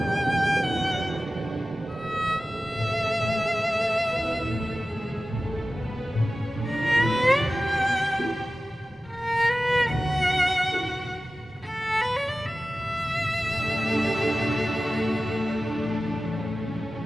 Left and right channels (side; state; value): both; normal; correlation 0.95